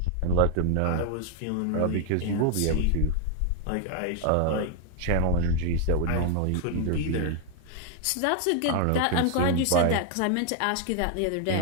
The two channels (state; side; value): different; both; correlation 0.00